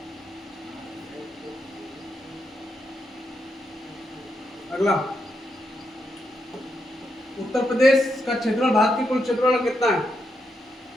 अगला, उत्तर प्रदेश का क्षेत्रफल भारत के कुल क्षेत्रफल का कितना है?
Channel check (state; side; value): normal; both; correlation 0.82